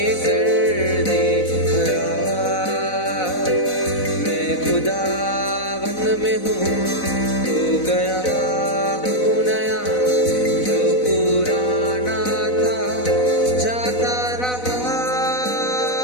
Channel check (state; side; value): late; right; 4.0 ms